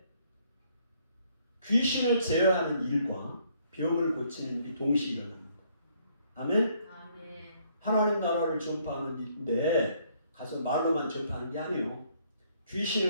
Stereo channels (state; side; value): inverted; both; correlation -0.67